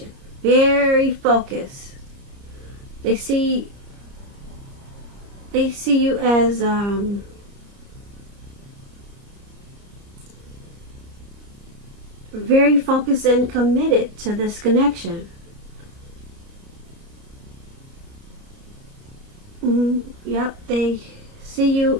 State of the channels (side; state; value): left; late; 29 ms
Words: Very focused. They see you as very focused and committed to this connection. Yep, they see you